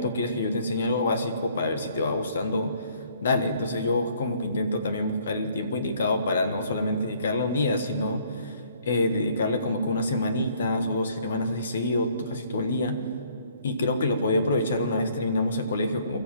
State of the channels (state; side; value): inverted; both; correlation -0.62